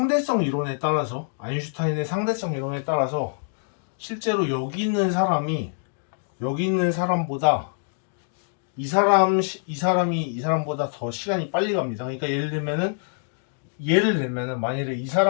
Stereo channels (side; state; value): right; silent; digital silence